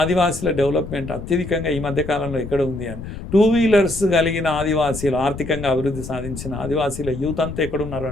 డెవలప్మెంట్ అత్యధికంగా ఈ మధ్యకాలంలో ఎక్కడ ఉంది అని. 2 wheelers కలిగిన ఆదివాసీలు, ఆర్థికంగా అభివృద్ధి సాధించిన ఆదివాసీల యూత్ అంతా ఎక్కడున్నారు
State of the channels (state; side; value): noise; left; rumble, 10 dB below the sound